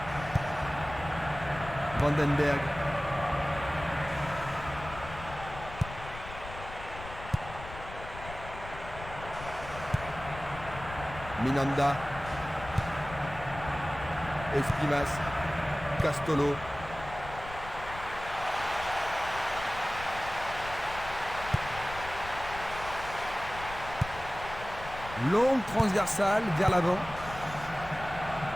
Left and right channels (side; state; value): left; noise; rumble, 13 dB below the sound